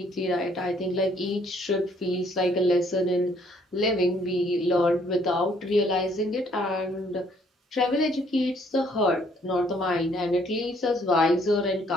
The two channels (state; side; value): normal; both; correlation 0.64